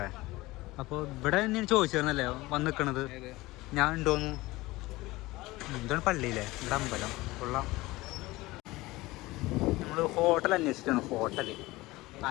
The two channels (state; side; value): quieter; right; 20.0 dB